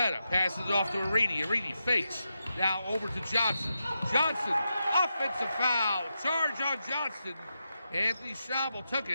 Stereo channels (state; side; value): inverted; both; correlation -0.87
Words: passes it off to Reedy. Reedy fakes. Now over to Johnson. Johnson, offensive foul. Charge on Johnson. Anthony Schnabel took